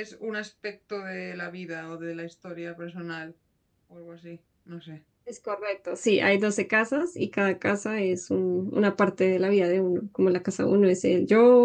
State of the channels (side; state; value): both; identical; correlation 1.00